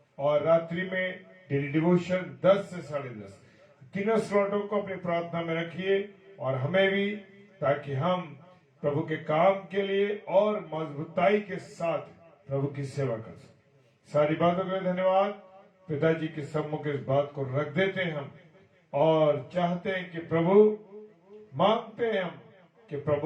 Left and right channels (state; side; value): identical; both; correlation 1.00